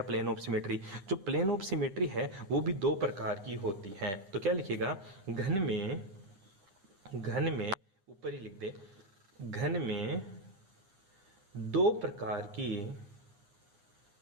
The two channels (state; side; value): late; left; 9.8 ms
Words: प्लेन ऑफ सिमेट्री। जो प्लेन ऑफ सिमेट्री है वो भी दो प्रकार की होती हैं। तो क्या लिखेगा? घन में ऊपर ही लिख दे, घन में दो प्रकार